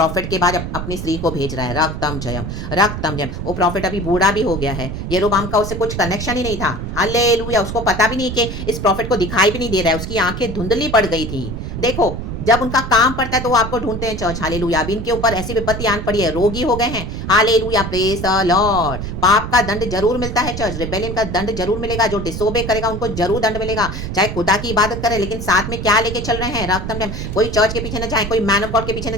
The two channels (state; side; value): noise; right; rumble, 6 dB below the sound